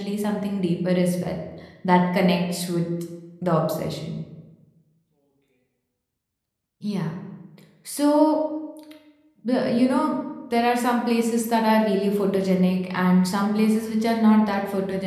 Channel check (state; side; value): identical; both; correlation 1.00